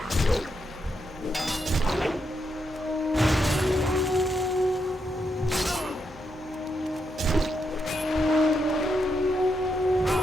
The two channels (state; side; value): normal; both; correlation 0.81